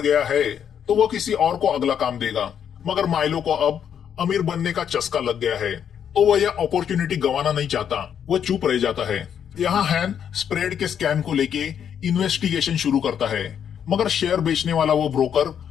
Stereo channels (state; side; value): quieter; right; 8.5 dB